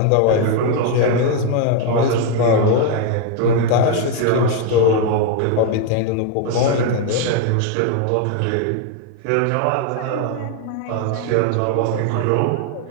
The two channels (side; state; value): both; different; correlation 0.01